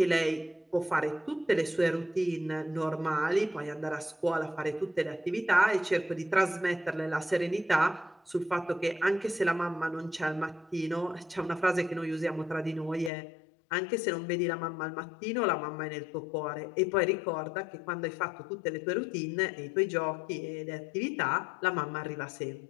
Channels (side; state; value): right; drops out; at 13.1 s